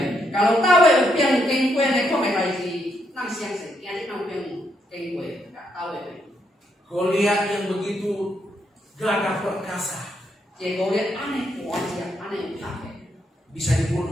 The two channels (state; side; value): normal; both; correlation 0.77